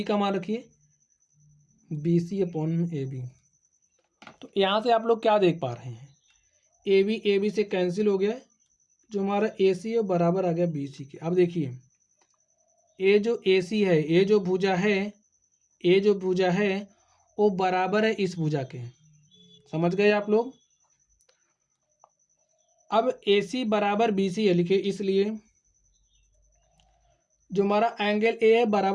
का मान रखिए B C upon A B. तो यहाँ से आप लोग क्या देख पा रहे हैं, ए बी से कैंसिल हो गया, जो हमारा ए सी है बराबर आ गया बी सी के। अब देखिए ए जो ए सी है, ए जो भुजा है, ए जो भुजा है वो बराबर है इस भुजा के, समझ गए आप लोग। अब ए सी बराबर बी सी है लिखे, इसलिए जो हमारा एंगल ए है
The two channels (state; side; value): identical; both; correlation 1.00